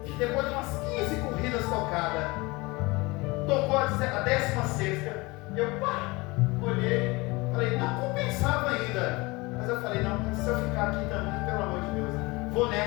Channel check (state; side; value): quieter; right; 23.8 dB